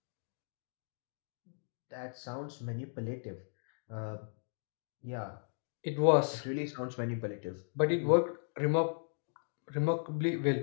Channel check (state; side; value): silent; right; digital silence